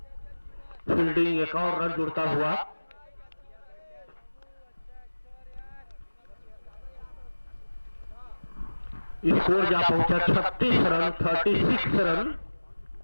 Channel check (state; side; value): inverted; both; correlation -1.00